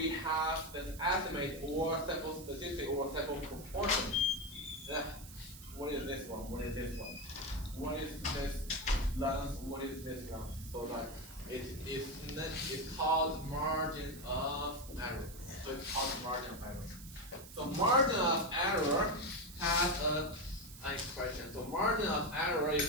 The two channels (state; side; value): noise; right; hiss, 16 dB below the sound